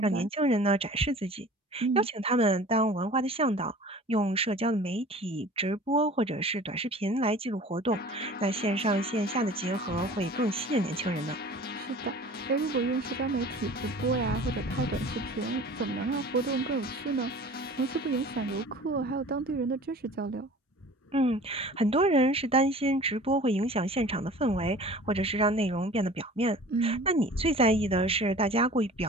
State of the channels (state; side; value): normal; both; correlation 0.43